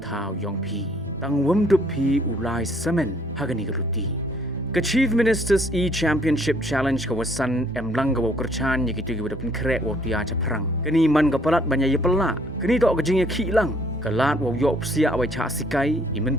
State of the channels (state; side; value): normal; both; correlation 0.63